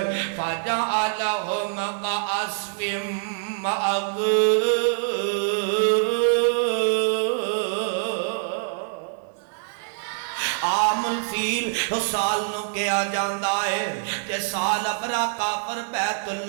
فجعلہم کعصف عام الفیل اس سال نو کیا جاندہ ہے کہ سال ابرا کافر بیت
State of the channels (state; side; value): silent; left; 62 dB below the other